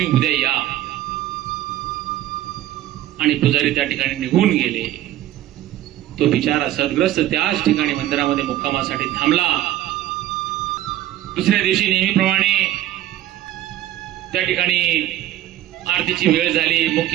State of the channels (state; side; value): quieter; left; 13.6 dB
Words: उद्या या. आणि पुजारी त्या ठिकाणी निघून गेले. तो बिचारा सद्ग्रस्त त्याच ठिकाणी मंदिरामध्ये मुक्कामासाठी थांबला. दुसऱ्या दिवशी नेहमीप्रमाणे त्या ठिकाणी आरतीची वेळ झाली.